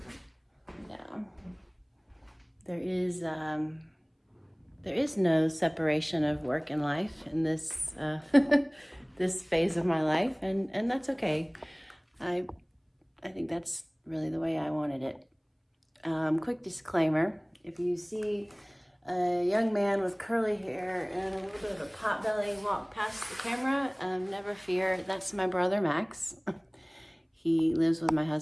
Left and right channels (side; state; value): both; identical; correlation 1.00